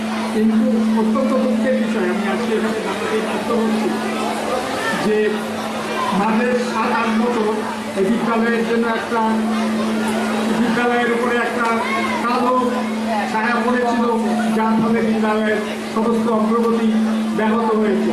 কিন্তু অত্যন্ত দুঃখের বিষয় আমি আজকে এখানে জানাতে বাধ্য হচ্ছি যে মাঝে 7-8 বছর এই বিদ্যালয়ের জন্য একটা বিদ্যালয়ের উপরে একটা কালো ছায়া পড়েছিল, যার ফলে বিদ্যালয়ের সমস্ত অগ্রগতি ব্যাহত হয়েছে।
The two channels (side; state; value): both; identical; correlation 1.00